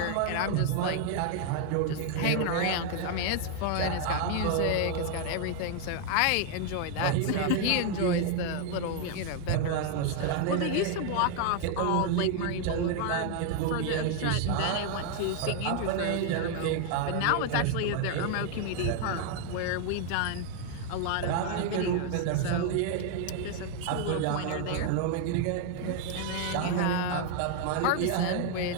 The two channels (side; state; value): both; different; correlation 0.00